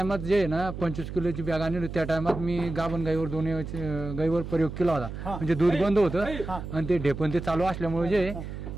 जे आहे ना 25 किलोची बॅग आणली, त्या टायमात मी गाभण गाईवर दोन्ही गाईवर प्रयोग केला होता. म्हणजे दूध बंद होतं आणि ते ढेपण ते चालू असल्यामुळे जे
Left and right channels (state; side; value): noise; right; hum, 8 dB below the sound